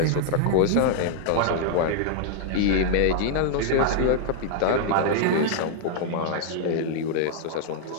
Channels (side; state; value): both; different; correlation -0.01